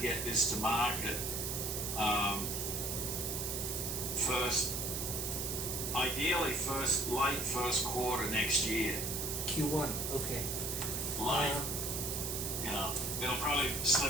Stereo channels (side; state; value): right; noise; hiss, 2 dB below the sound